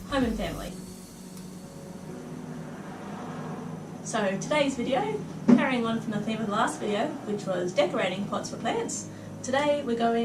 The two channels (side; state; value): both; identical; correlation 1.00